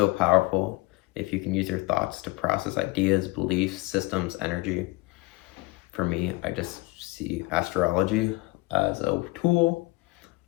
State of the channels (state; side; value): quieter; right; 22.6 dB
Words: powerful if you can use your thoughts to process ideas, beliefs, systems, energy. For me, I just see astrology as a tool,